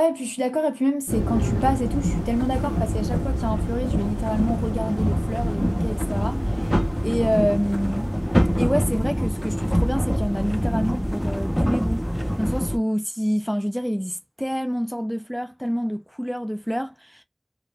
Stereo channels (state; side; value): identical; both; correlation 1.00